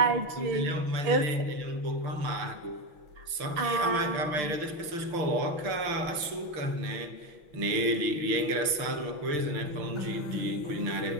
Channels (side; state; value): left; late; 6.1 ms